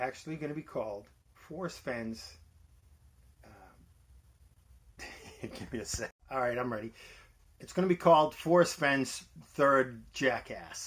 going to be called Forrest Fenn's, give me a sec. All right, I'm ready. It's going to be called Forrest Fenn's Third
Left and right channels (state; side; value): identical; both; correlation 1.00